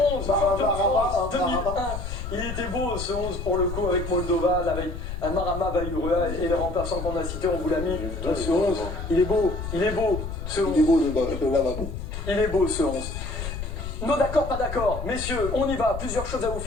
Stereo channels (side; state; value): left; noise; rumble, 6 dB below the sound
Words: 11, champion de France 2001. Il était beau ce 11 pour le coup avec Moldovan, avec Marama Vaïuria et les remplaçants qu'on a cités, on vous l'a mis. Ce 11, il est beau, ce 11. Il est beau le lavabo. Il est beau ce 11. Non, d'accord, pas d'accord. Messieurs, on y va. Plusieurs choses à vous